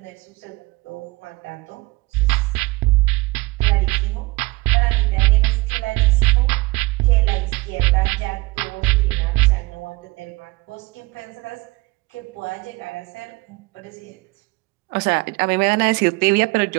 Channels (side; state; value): left; quieter; 23.3 dB